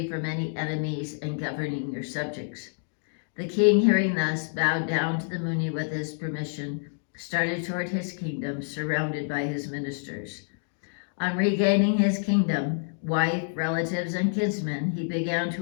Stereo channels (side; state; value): right; silent; digital silence